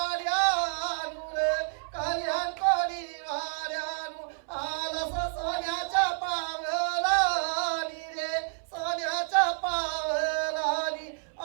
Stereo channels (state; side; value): silent; left; 58 dB below the other